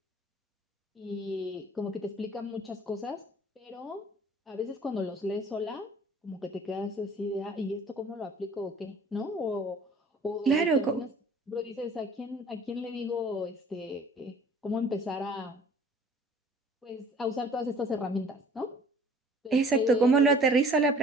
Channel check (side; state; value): both; normal; correlation 0.51